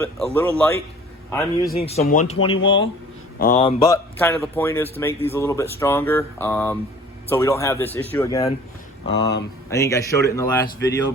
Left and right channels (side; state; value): both; normal; correlation 0.48